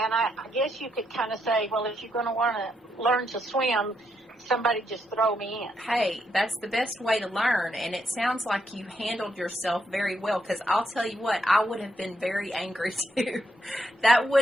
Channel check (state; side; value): normal; both; correlation 0.78